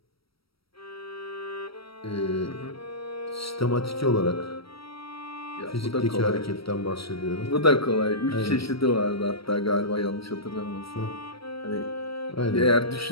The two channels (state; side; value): late; right; 0.75 ms